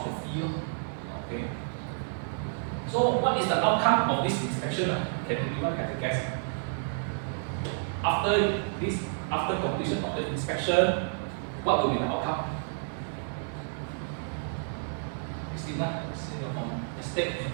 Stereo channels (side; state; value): left; silent; 58 dB below the other